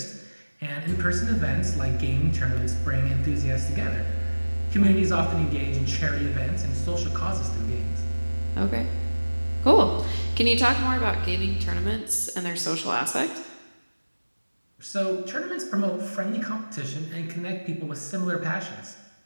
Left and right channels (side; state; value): both; inverted; correlation -1.00